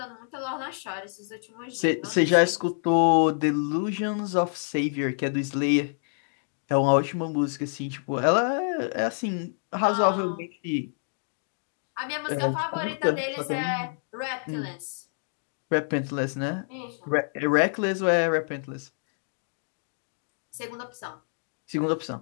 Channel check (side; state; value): right; silent; digital silence